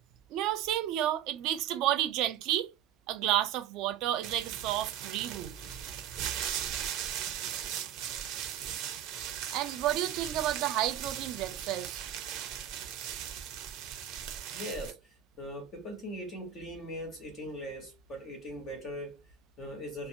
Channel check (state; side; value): quieter; left; 10.0 dB